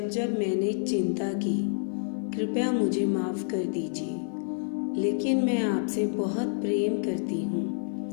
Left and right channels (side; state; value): right; silent; 59 dB below the other